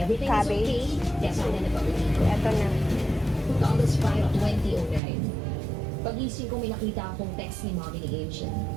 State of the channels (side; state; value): left; drops out; at 5.0 s